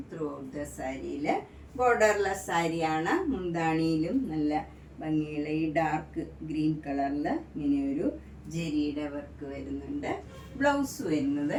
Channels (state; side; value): identical; both; correlation 1.00